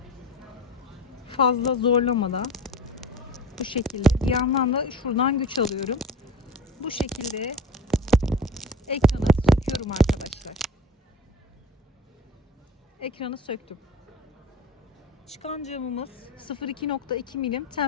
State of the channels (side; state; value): both; normal; correlation 0.36